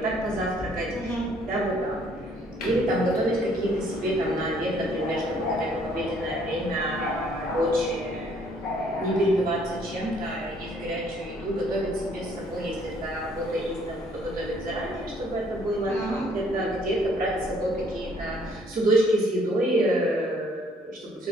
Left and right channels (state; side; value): normal; both; correlation 0.63